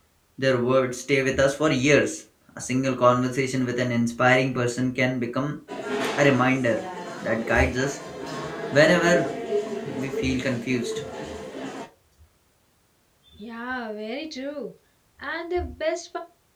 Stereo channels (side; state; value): both; identical; correlation 1.00